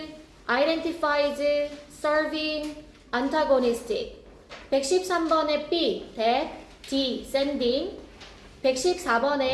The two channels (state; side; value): identical; both; correlation 1.00